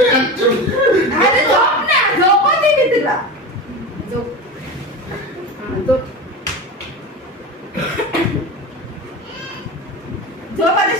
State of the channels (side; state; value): both; normal; correlation 0.26